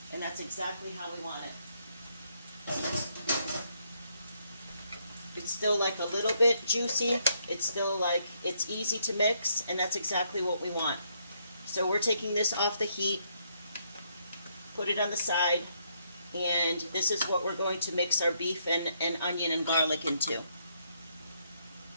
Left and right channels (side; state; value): both; inverted; correlation -0.73